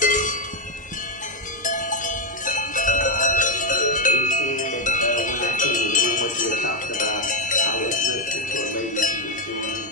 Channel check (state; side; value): normal; both; correlation 0.06